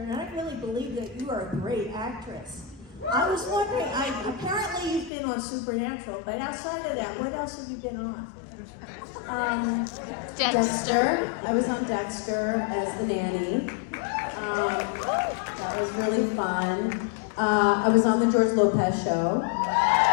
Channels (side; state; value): right; drops out; at 5.1 s